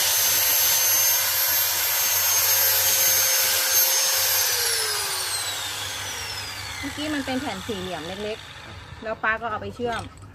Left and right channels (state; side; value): identical; both; correlation 1.00